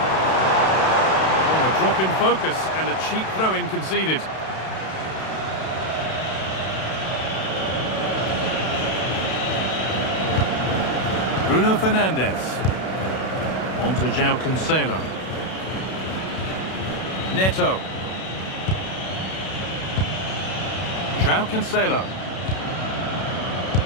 Oh, a drop in focus and a cheap throw-in conceded. Bruno Fernandes. On to João Cancelo. Neto. João Cancelo.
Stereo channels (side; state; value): right; late; 32 ms